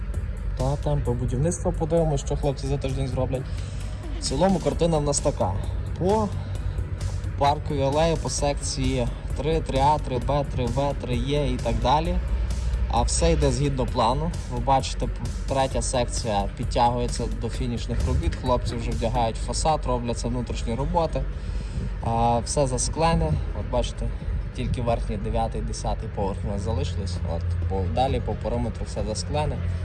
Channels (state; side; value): identical; both; correlation 1.00